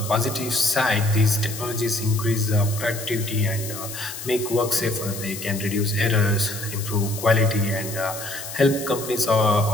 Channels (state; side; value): noise; left; hiss, 10 dB below the sound